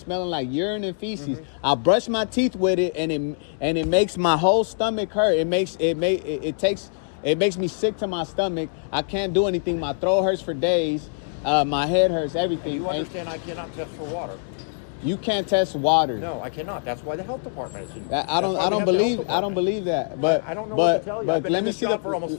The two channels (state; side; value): silent; right; 61 dB below the other